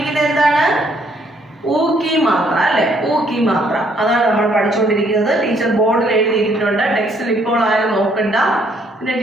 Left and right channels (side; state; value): both; normal; correlation 0.67